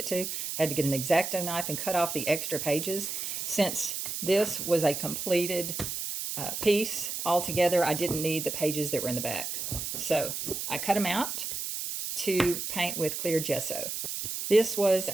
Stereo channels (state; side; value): noise; right; hiss, 4 dB below the sound